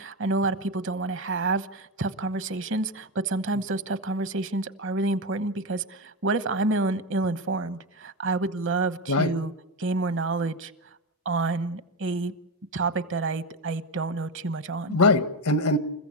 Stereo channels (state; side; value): normal; both; correlation 0.14